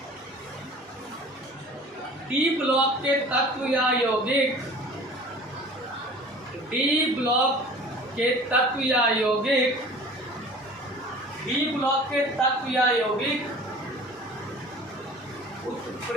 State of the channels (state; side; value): normal; both; correlation 0.44